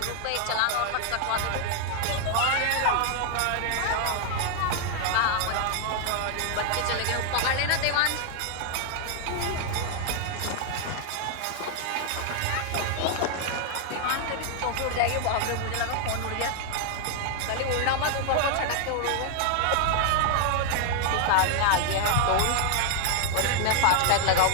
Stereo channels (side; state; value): both; different; correlation 0.00